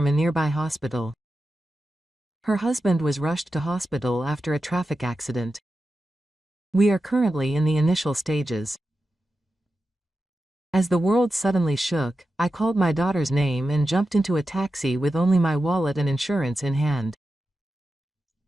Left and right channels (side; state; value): both; normal; correlation 0.91